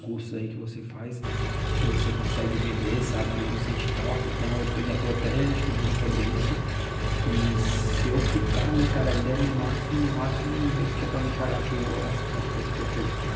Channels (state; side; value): identical; both; correlation 1.00